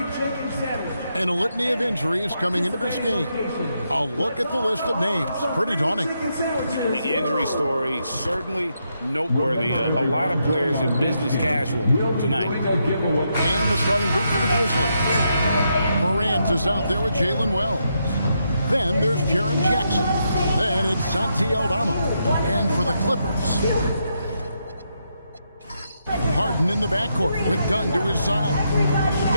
And a litany of injuries coming into this game. A look at the list of names. Pretty daunting. The injury story certainly noteworthy. A lot of players in business casual tonight. And the starting group for the Grizzlies. Morant is out there with Jalen Wells. Then there's Jaren Jackson. Then it's Santi Aldama. And for the Clippers, Harden in the backcourt with Dunn to his side.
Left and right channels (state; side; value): inverted; both; correlation -0.81